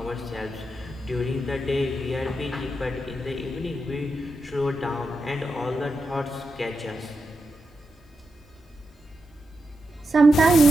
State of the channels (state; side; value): normal; both; correlation 0.87